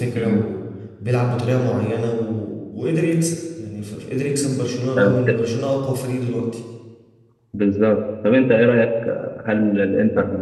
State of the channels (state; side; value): identical; both; correlation 1.00